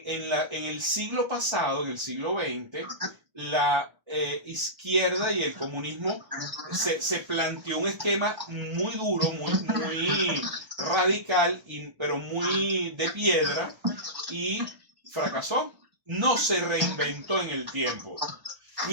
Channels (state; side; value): late; left; 1.3 ms